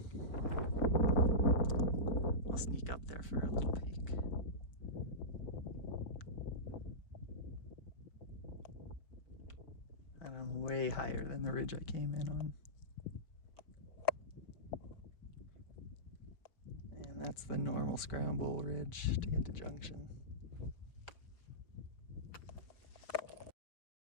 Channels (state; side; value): late; right; 4.9 ms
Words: I'll sneak up there for a little peek. And I'm way higher than the ridge I came in on. And that's the normal scramble ridge to get to Junction.